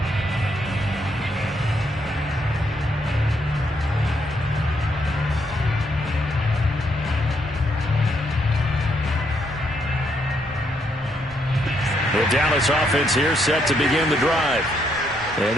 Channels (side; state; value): both; normal; correlation 0.75